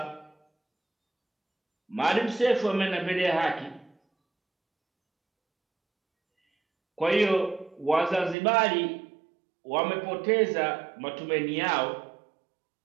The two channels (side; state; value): left; drops out; at 8.3 s